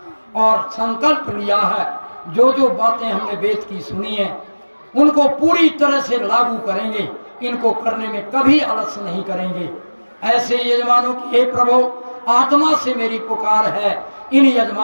और संकल्प लिया है। जो जो बातें हमने वेद की सुनी है उनको पूरी तरह से लागू करेंगे, इनको करने में कभी आलस्य नहीं करेंगे। ऐसे यजमानों की हे प्रभु, आत्मा से मेरी पुकार है, इन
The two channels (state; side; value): inverted; both; correlation -1.00